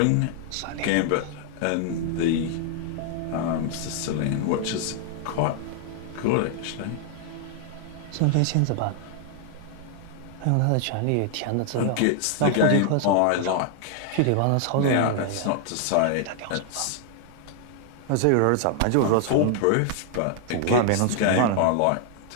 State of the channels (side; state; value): both; different; correlation 0.00